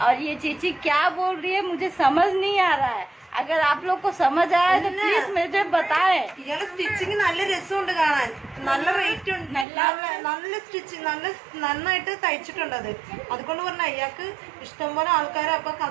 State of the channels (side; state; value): left; drops out; at 9.7 s